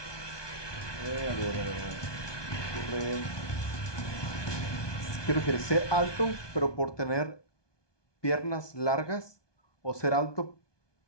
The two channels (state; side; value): late; right; 1.2 ms